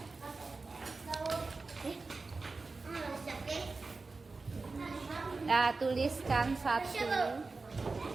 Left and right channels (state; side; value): quieter; left; 3.9 dB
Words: Ya, tuliskan satu.